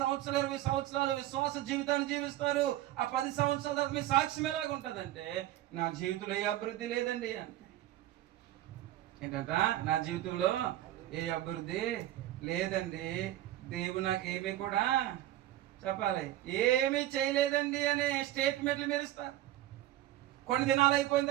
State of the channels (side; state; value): left; quieter; 14.3 dB